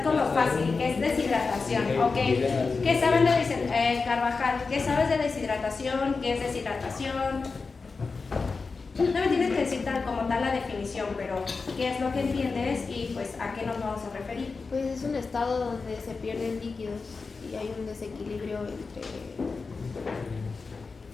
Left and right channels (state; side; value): quieter; right; 4.4 dB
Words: con lo fácil, que es deshidratación, ¿ok? ¿Qué saben de Carvajal? ¿Qué sabes de deshidratación? ¿Qué es deshidratación? No me tienes que decir como tal la definición, pero ¿qué es lo que entiendes y pues a qué nos vamos a referir? Pues es un estado donde se pierden líquidos y hay un desequilibrio entre...